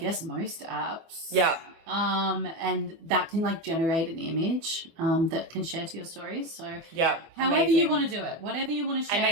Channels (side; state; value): left; late; 24 ms